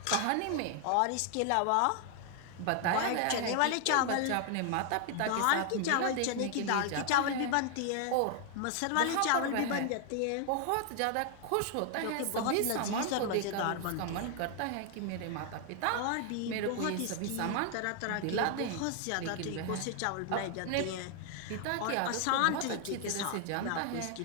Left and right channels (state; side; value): different; both; correlation 0.00